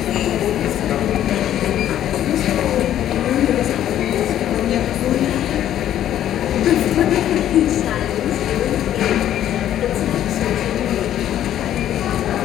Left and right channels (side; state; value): right; quieter; 11.5 dB